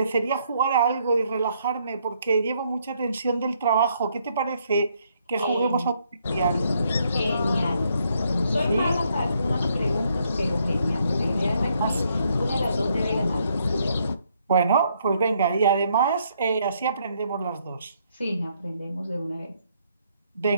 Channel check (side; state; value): both; inverted; correlation -0.72